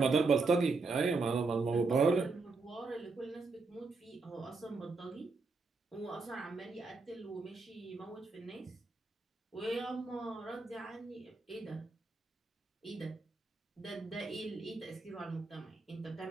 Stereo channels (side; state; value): left; quieter; 3.9 dB